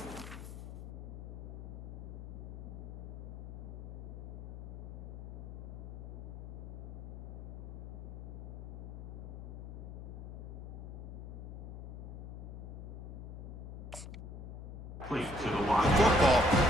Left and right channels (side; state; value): left; noise; hum, 8 dB below the sound